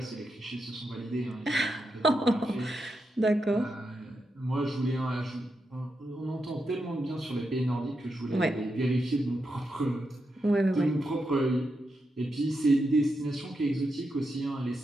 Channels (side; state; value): both; normal; correlation 0.85